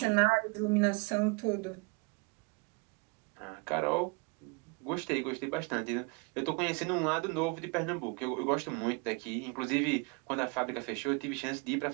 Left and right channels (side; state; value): left; quieter; 30.3 dB